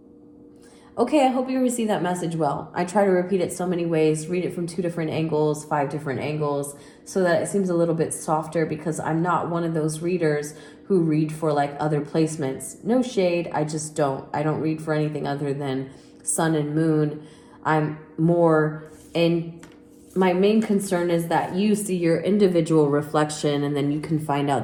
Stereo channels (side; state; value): both; identical; correlation 1.00